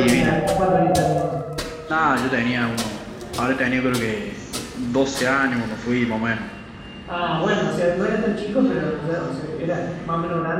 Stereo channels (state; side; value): identical; both; correlation 1.00